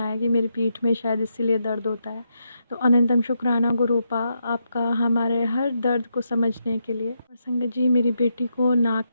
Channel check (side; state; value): both; inverted; correlation -0.82